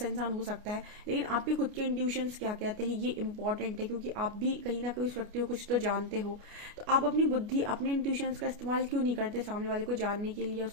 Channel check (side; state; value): left; late; 29 ms